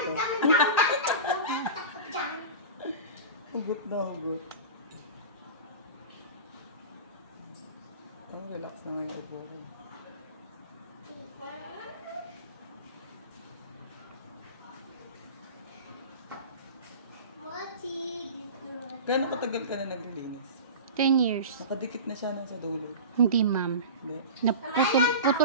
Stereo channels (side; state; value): both; inverted; correlation -0.31